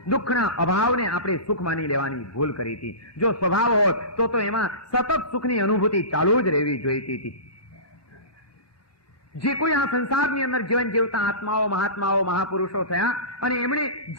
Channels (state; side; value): late; right; 1.2 ms